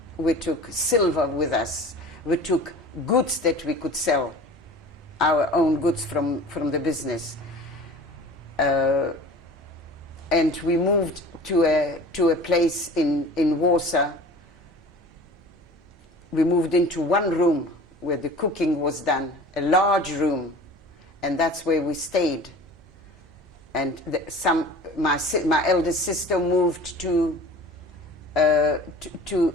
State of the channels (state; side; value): normal; both; correlation 0.41